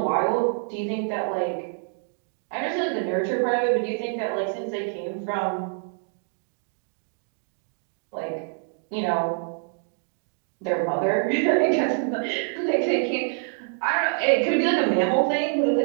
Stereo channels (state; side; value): silent; left; 60 dB below the other